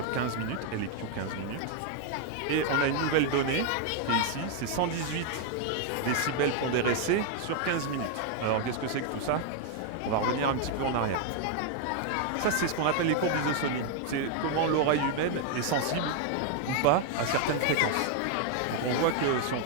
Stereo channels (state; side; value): different; both; correlation 0.00